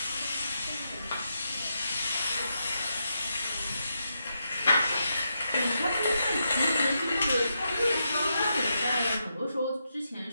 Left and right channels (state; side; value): inverted; both; correlation -0.84